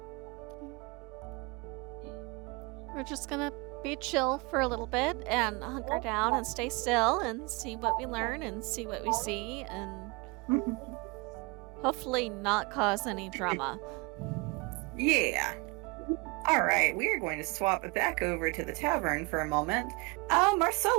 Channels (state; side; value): quieter; left; 26.7 dB